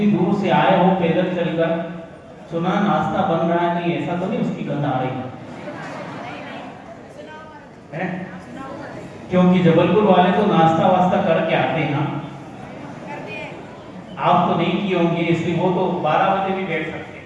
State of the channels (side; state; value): both; identical; correlation 1.00